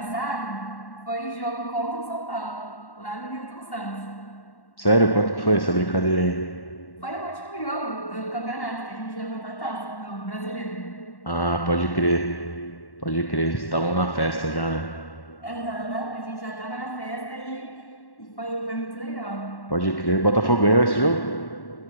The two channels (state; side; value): late; right; 1.1 ms